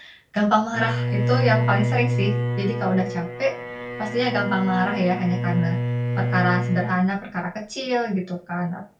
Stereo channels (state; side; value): identical; both; correlation 1.00